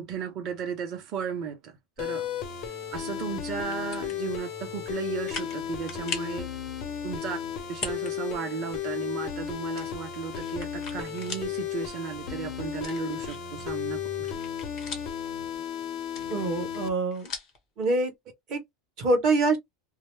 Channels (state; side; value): normal; both; correlation 0.37